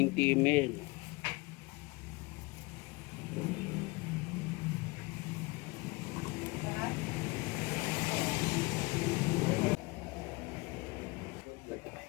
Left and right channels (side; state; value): right; quieter; 24.7 dB